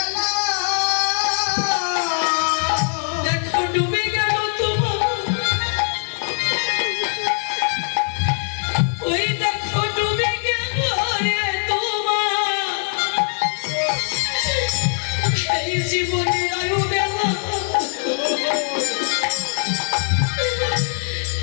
দেখো ডুবে গেল তোমার ওই দেখো ডুবে গেল রে তোমার এই জীবনের আয়ু বেলা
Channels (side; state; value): right; silent; 58 dB below the other